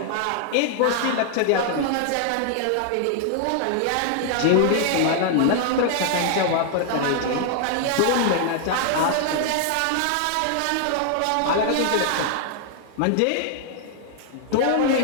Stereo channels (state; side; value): different; both; correlation 0.00